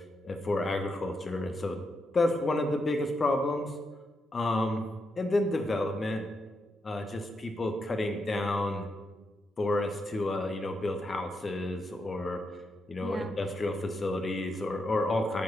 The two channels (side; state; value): both; normal; correlation 0.83